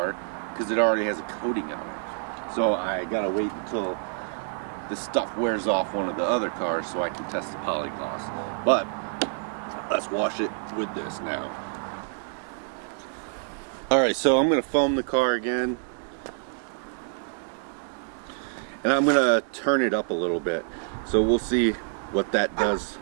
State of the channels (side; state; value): left; silent; digital silence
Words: because it already has a coating on it. So I gotta wait until the stuff wears off one of the other cars so I can test the polygloss. But let's wash it with this now. Alright, so I'm gonna foam the car again. And I'm gonna turn it up a little bit. So we'll see what that does